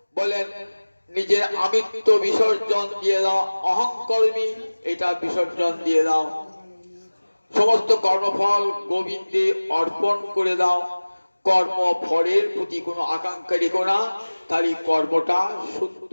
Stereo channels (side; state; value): both; inverted; correlation -1.00